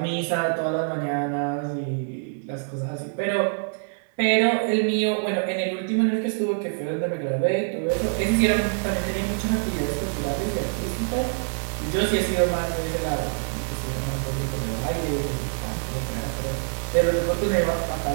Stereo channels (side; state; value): left; silent; digital silence